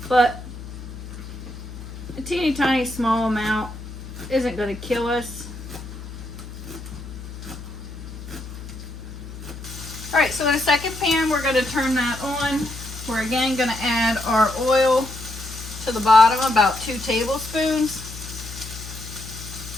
but a teeny tiny small amount isn't going to kill us. Alright, so in a second pan, we're going to turn that on. We're again going to add our oil to the bottom, about 2 tablespoons.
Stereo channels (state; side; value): noise; left; hum, 12 dB below the sound